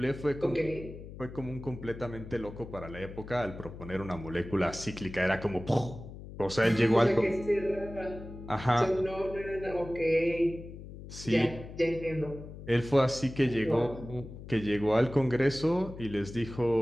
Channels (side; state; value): left; noise; hum, 13 dB below the sound